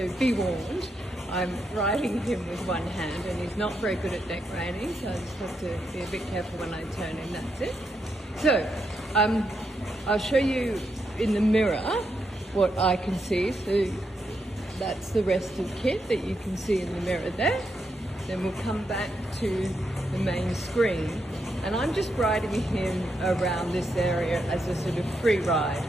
be warned. I'm riding him with one hand and he's not very good at neck reining, so I just have to be a bit careful when I turn him, that's it. So, I'll show you in the mirror what I can see. So that's the rest of KITT that you can see in the mirror there. Then we'll come back to the main screen, and I'm just riding him around this area as a sort of free ride.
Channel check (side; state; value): both; normal; correlation 0.82